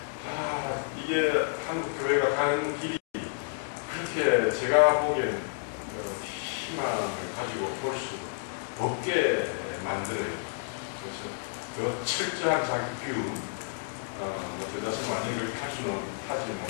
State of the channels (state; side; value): silent; right; digital silence